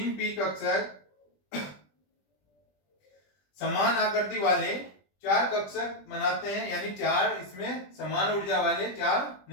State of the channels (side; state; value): right; late; 20 ms